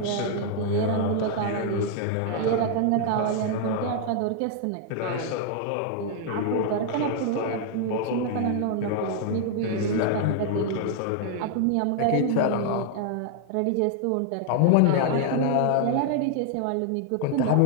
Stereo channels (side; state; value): both; different; correlation 0.00